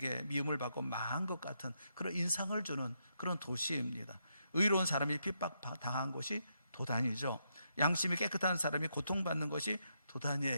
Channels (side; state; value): both; inverted; correlation -0.80